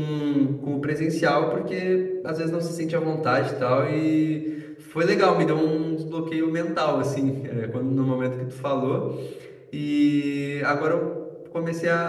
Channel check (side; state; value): both; identical; correlation 1.00